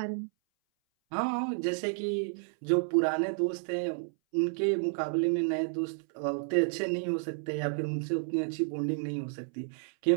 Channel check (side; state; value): left; silent; 57 dB below the other